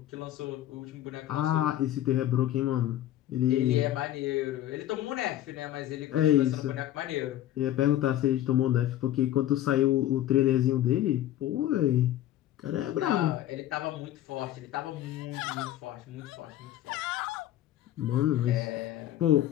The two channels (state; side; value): quieter; right; 13.0 dB